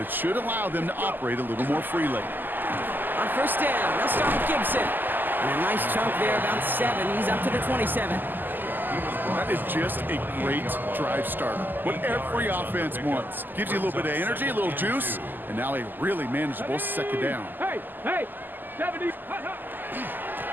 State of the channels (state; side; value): late; left; 0.089 ms